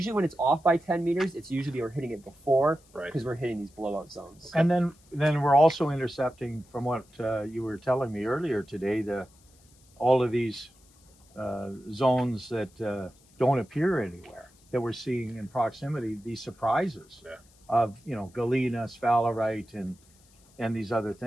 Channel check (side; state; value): left; noise; hiss, 30 dB below the sound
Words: when it's off by 10 meters, it's usually we're hitting it before because we're hitting these blowout zones. Okay. And then we're also intercepting, from what you were telling me earlier today, all of these zones that don't appear anywhere, that we're seeing in proximity, these surprises of, you know, galena, sphalerite, and these other